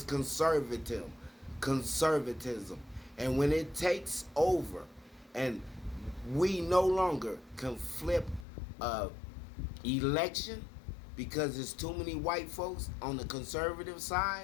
conservatism. And when it takes over and we no longer can flip a election because there's too many white folks on the conservative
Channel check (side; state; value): right; drops out; at 8.5 s